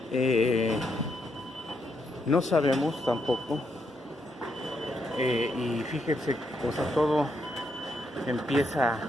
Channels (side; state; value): both; normal; correlation 0.78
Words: no sabemos tampoco, y fíjense, todo empieza